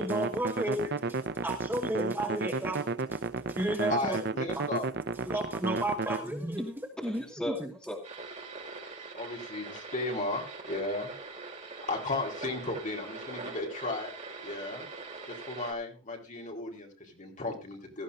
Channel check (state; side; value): normal; both; correlation 0.30